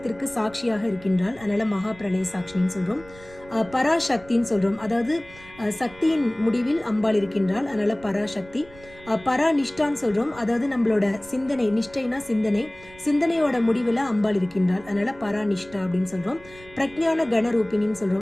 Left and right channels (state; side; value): noise; right; rumble, 22 dB below the sound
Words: சாட்சியாக இருக்கின்றாள். அதனால மகா பிரளய சாட்சினின்னு சொல்றோம். பராசக்தின்னு சொல்றோம். அதாவது சக்தியின் முடிவில் அம்பாள் இருக்கின்றாள். அதனால பராசக்தி. பராநிஷ்டான்னு சொல்றோம். அதாவது நம்மளோட சிந்தனை, நிஷ்டைனா சிந்தனை, சிந்தனையோட முடிவுல அம்பாள் இருக்கின்றாள். அதனால பராநிஷ்டா அப்படின்னு சொல்றோம். பிரக்ஞான கணரூபிணின்னு